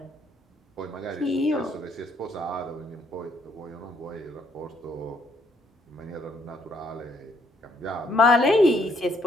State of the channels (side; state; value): both; normal; correlation 0.69